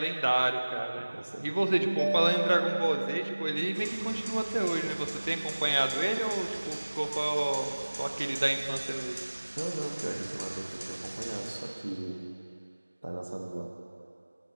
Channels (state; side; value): inverted; both; correlation -1.00